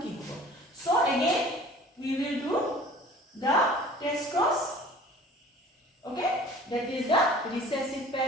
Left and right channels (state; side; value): normal; both; correlation 0.47